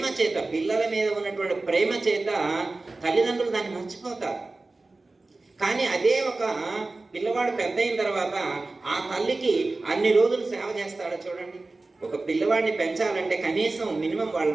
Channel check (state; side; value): quieter; left; 3.3 dB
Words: చేత, పిల్లల మీద ఉన్నటువంటి ప్రేమ చేత తల్లిదండ్రులు దాన్ని మర్చిపోతారు. కానీ అదే ఒక పిల్లవాడు పెద్ద అయిన తర్వాత ఆ తల్లికి అన్ని రోజులు సేవ చేస్తాడో చూడండి. ఒక పిల్లవాడిని పెంచాలంటే కనీసం మినిమం వాళ్ళ